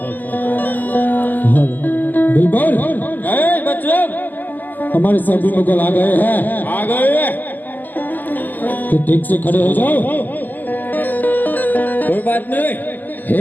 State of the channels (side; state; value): right; late; 0.086 ms